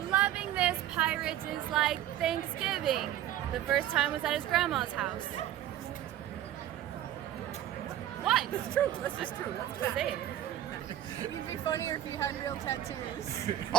Loving this pirate is like Thanksgiving. The first time was at his grandma's house. What? It's true. That's just true. That's say it. It'd be funnier if you had real tattoos.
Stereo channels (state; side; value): quieter; left; 12.6 dB